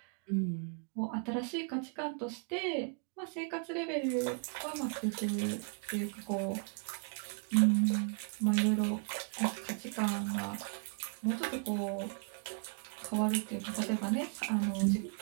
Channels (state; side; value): quieter; left; 38.4 dB